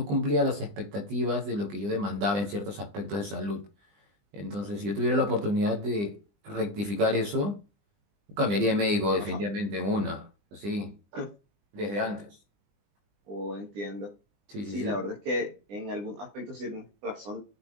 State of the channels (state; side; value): late; left; 20 ms